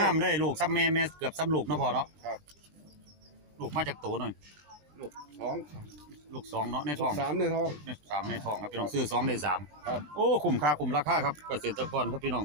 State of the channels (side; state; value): left; late; 20 ms